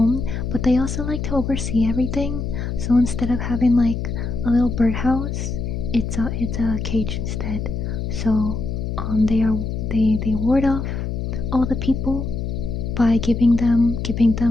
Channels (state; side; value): noise; left; hum, 3 dB below the sound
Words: but they also like to oversee everything. So instead of having like a little birdhouse, it's a cage instead. So they ward off all the people by giving